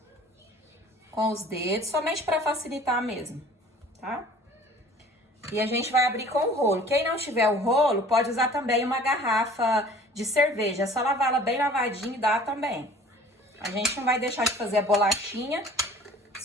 com os dedos, somente para facilitar mesmo, tá? E a gente vai abrir com o rolo. Quem não tiver o rolo, pode usar também uma garrafa de cerveja. É só lavar ela bem lavadinha e dá também. A gente não vai deixar de fazer a bolachinha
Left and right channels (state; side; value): normal; both; correlation 0.49